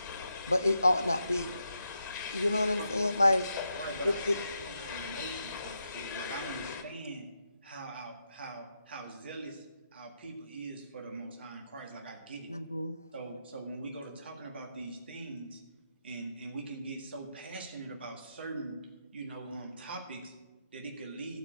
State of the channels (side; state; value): both; inverted; correlation -0.83